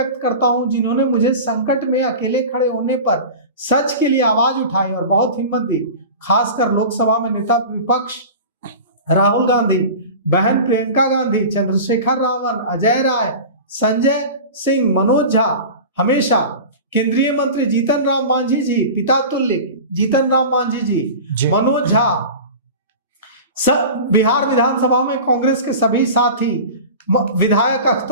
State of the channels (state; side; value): inverted; both; correlation -0.34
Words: करता हूं, जिन्होंने मुझे संकट में अकेले खड़े होने पर सच के लिए आवाज उठाई और बहुत हिम्मत दी। खासकर लोकसभा में नेता विपक्ष राहुल गांधी, बहन प्रियंका गांधी, चंद्रशेखर रावण, अजय राय, संजय सिंह, मनोज झा, हमेशा केंद्रीय मंत्री जीतन राम मांझी जी, पिता तुल्य जीतन राम मांझी जी, मनोज झा, सब बिहार विधानसभा में कांग्रेस के सभी साथी, विधायक